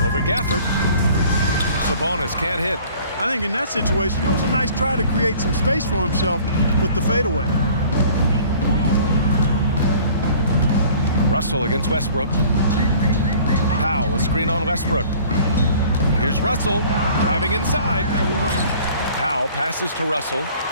Over Gafford. Sabonis can't hit. I think in that situation, it was a nice try to create some space for himself with the fadeaway. Russell against Westbrook. Powell, a screen on Westbrook. Here's Russell driving inside. Powell passes to Russell.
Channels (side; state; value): both; inverted; correlation -0.51